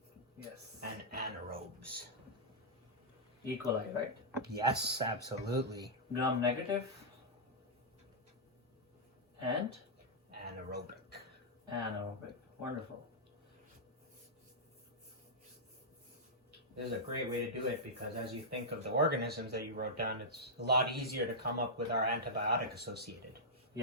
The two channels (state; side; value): normal; both; correlation -0.09